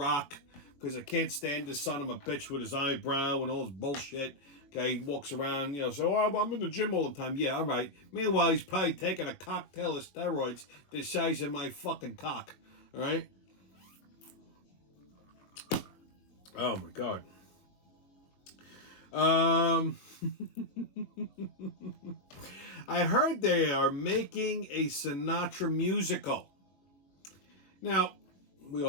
because I can't stand this son of a bitch with his eyebrow and all his bullshit. Okay, he walks around, so I'm in the gym all the time. Yeah, all right. Meanwhile, he's probably taking a cocktail of steroids the size of my fucking cock. All right? Oh, my God. I heard they are making a Sinatra musical. Now, we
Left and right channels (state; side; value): late; right; 21 ms